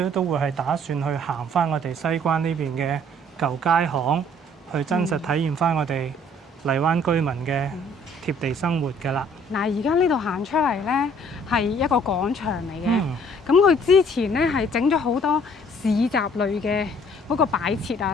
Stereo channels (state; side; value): normal; both; correlation 0.58